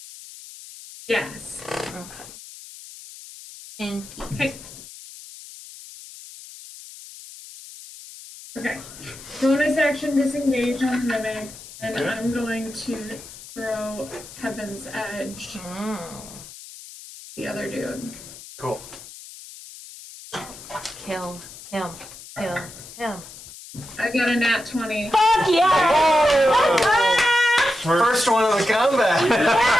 Yes. Okay. 10 feet. Okay. Okay. Bonus action disengage on the mimic, and Okay. I'm going to throw Heaven's Edge Mm. the other dude. Cool. Kill him. Kill him. I got a nat 20. Fuck yeah! First one of the combat.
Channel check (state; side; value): noise; left; hiss, 16 dB below the sound